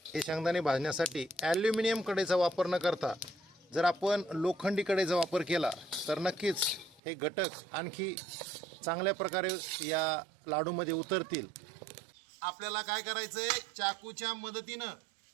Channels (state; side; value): drops out; left; at 7.0 s